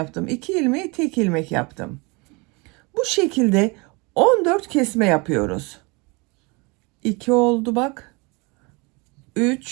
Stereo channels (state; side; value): quieter; left; 28.0 dB